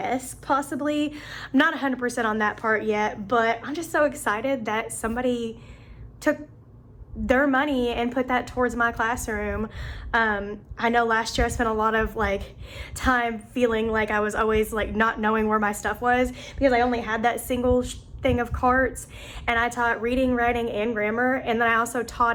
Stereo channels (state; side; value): identical; both; correlation 1.00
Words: possibly. I'm not 100% on that part yet, but I'm just so excited that somebody took their money and put that towards my classroom. I know last year I spent a lot of like time feeling like I was always like not knowing where my stuff was because I only had that single thing of carts, and I taught reading, writing, and grammar, and then I also